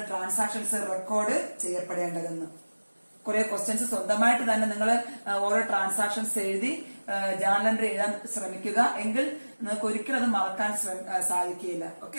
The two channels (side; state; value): both; inverted; correlation -1.00